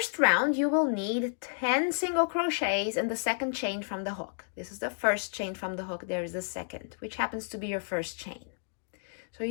round, you will need 10 single crochets in the second chain from the hook. This is the first chain from the hook. There is the second, which happens to be your first chain. So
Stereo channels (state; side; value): silent; right; digital silence